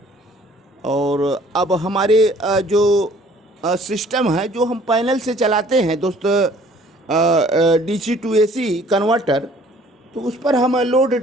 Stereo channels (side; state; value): both; normal; correlation 0.56